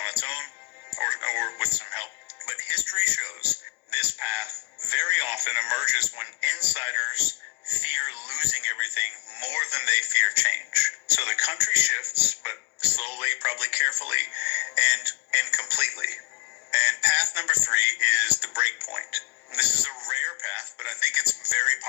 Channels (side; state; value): right; quieter; 23.7 dB